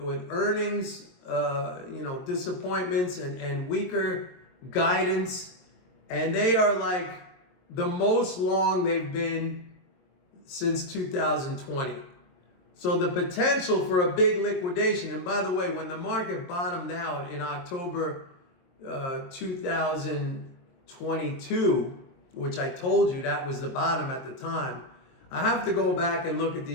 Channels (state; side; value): late; right; 22 ms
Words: earnings, disappointments and weaker guidance, and they are like the most long they've been since 2020. So the potential for a big liquidation, and by the way, when the market bottomed out in October 2022, which I told you that was the bottom at the time, I have to go back and look at